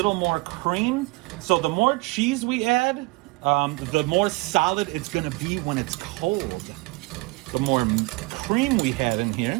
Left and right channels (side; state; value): left; quieter; 25.2 dB